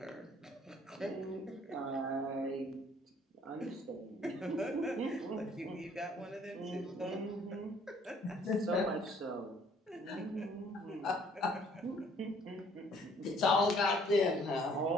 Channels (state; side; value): normal; both; correlation 0.60